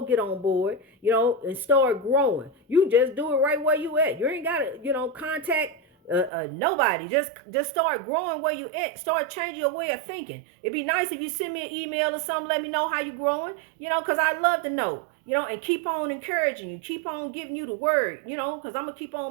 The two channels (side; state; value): left; drops out; at 6.3 s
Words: board, and start growing. You just do it right where you at. You ain't got to, contact Nobody. Just start growing where you at. Start changing your way of thinking. It'd be nice if you send me an email or something. Let me know how you growing. Because I love to know. And keep on encouraging you. Keep on giving you the word. Because I'm gonna keep